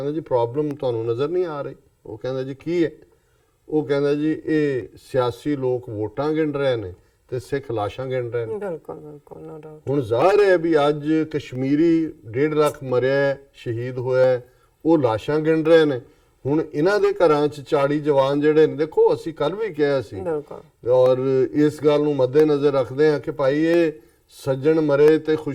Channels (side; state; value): both; identical; correlation 1.00